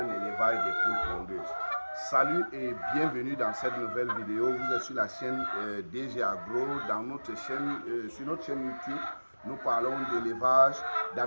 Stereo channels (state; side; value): inverted; both; correlation -1.00